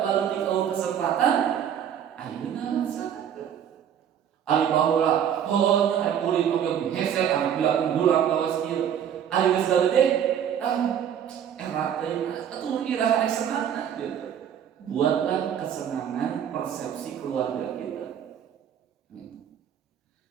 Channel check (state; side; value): quieter; left; 9.1 dB